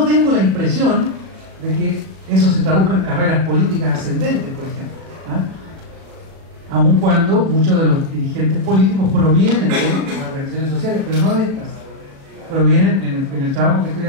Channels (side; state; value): left; late; 37 ms